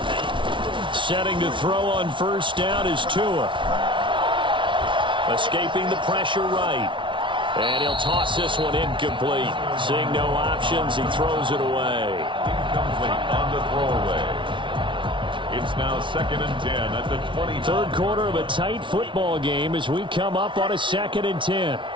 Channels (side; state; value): left; late; 0.24 ms